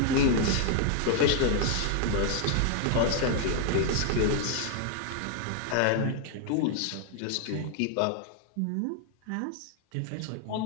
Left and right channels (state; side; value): different; both; correlation 0.00